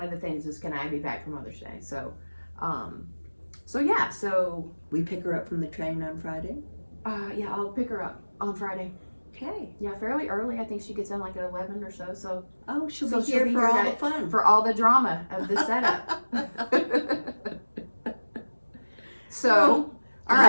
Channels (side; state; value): both; inverted; correlation -1.00